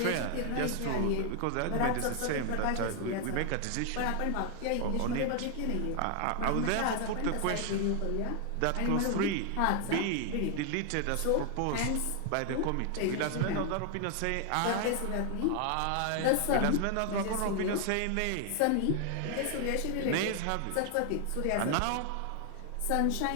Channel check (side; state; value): both; different; correlation 0.00